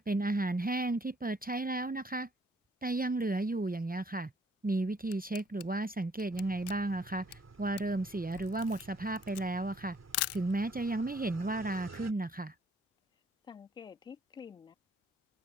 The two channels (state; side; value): normal; both; correlation 0.64